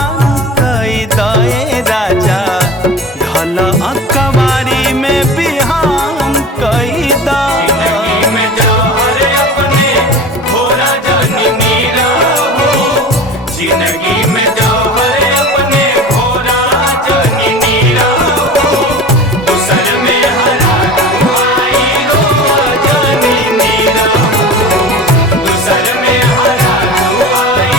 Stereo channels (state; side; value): normal; both; correlation 0.35